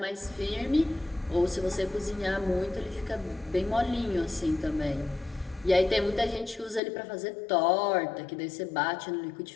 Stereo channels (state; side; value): drops out; right; at 6.8 s